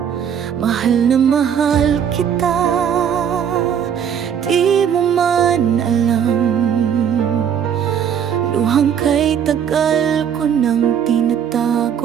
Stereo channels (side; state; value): left; quieter; 8.4 dB